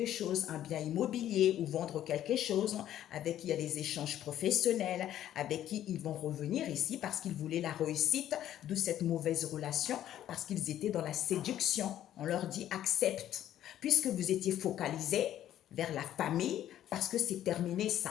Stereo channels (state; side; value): quieter; right; 11.8 dB